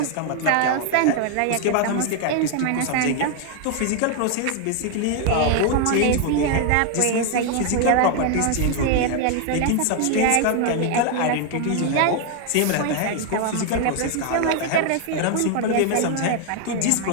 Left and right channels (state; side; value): different; both; correlation 0.00